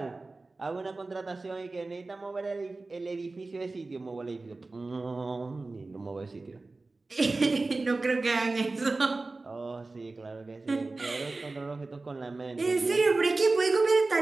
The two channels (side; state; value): left; quieter; 3.4 dB